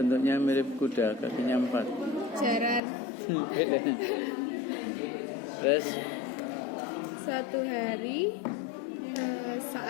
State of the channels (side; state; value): right; drops out; at 2.8 s